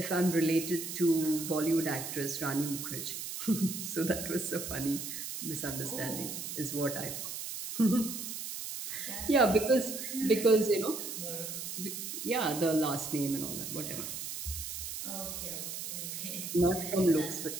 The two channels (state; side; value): noise; right; hiss, 6 dB below the sound